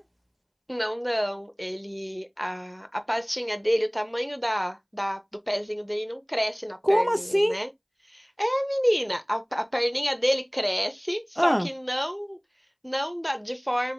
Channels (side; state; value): both; identical; correlation 1.00